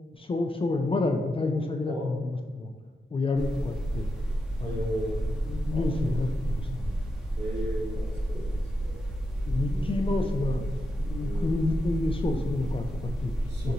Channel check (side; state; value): both; normal; correlation 0.87